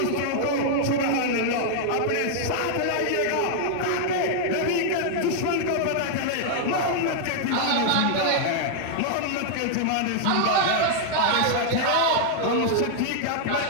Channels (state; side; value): different; both; correlation -0.01